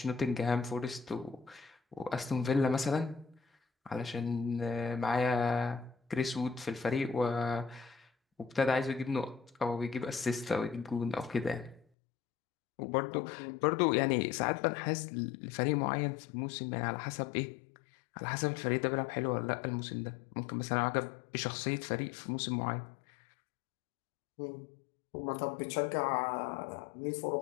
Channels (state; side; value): drops out; right; at 11.9 s